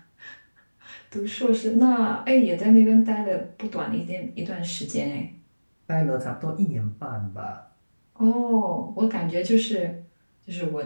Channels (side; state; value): both; inverted; correlation -1.00